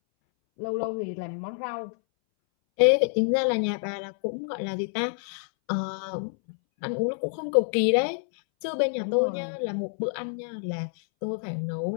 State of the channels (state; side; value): silent; right; 60 dB below the other